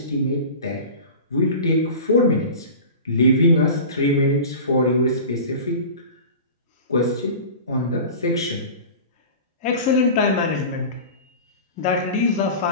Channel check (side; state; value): both; inverted; correlation -0.35